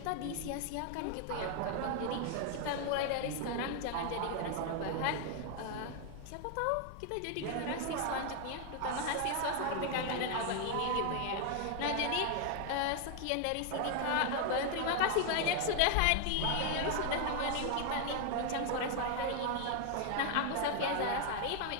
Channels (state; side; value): different; both; correlation 0.01